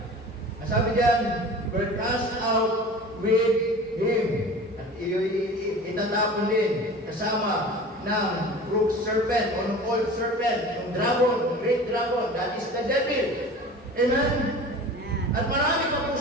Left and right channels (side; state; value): both; normal; correlation 0.38